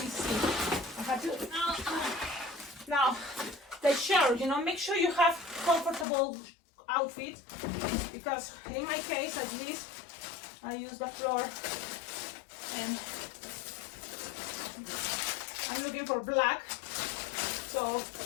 see. I have to now the shirt. You know, make sure you have comfortable outfit, because in my case, at least, I use the floor, and I'm looking for black. So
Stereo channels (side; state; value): right; drops out; at 6.1 s